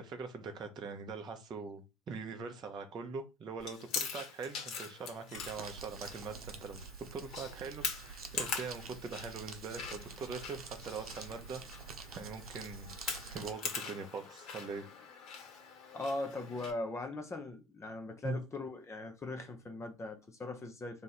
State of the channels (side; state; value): both; normal; correlation 0.48